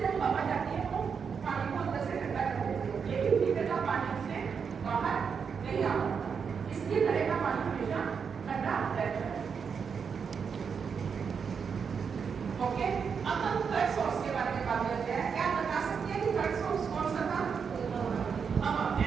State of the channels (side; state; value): left; quieter; 6.3 dB